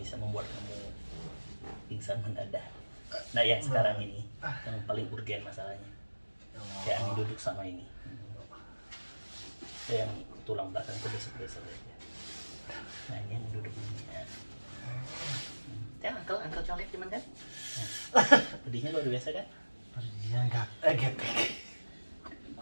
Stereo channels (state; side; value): inverted; both; correlation -1.00